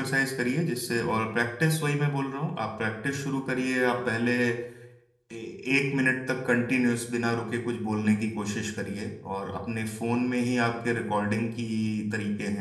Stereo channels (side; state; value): both; identical; correlation 1.00